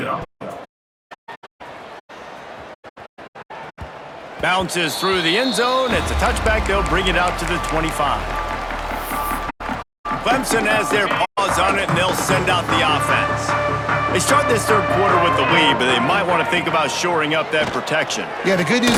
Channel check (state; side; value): identical; both; correlation 1.00